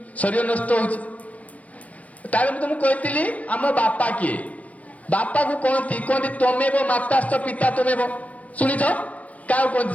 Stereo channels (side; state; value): right; late; 0.069 ms